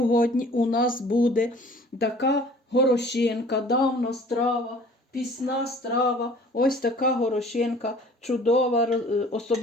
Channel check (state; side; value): normal; both; correlation 0.50